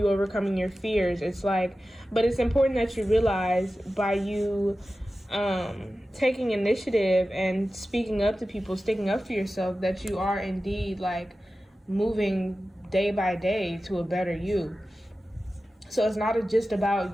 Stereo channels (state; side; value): normal; both; correlation 0.94